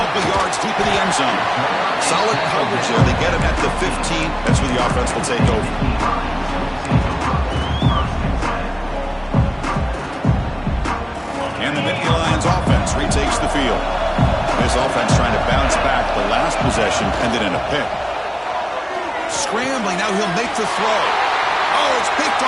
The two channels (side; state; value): both; identical; correlation 1.00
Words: yards deep in the end zone. Solid coverage there. They get him at the 15. That's where the offense will take over. And the Nittany Lions offense retakes the field. This offense trying to bounce back. The last possession ended in a pick. Scrambling. Now he'll make the throw. Oh, it's picked